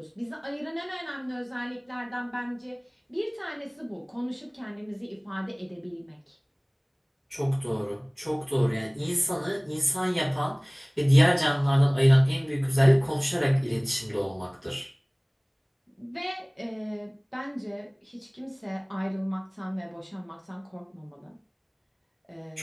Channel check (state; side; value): identical; both; correlation 1.00